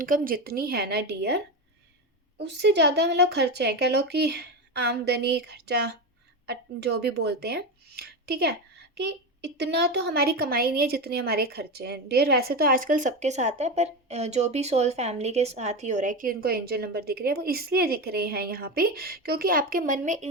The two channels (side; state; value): both; normal; correlation 0.18